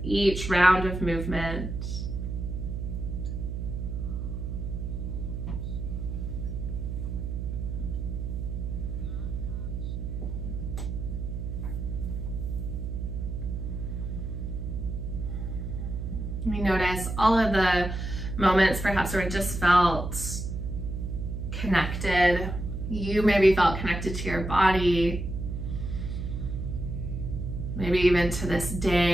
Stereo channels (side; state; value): right; noise; hum, 4 dB below the sound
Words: each round of movement. We notice all of the moments perhaps where it just felt connected. You maybe felt connected to your body, maybe even to this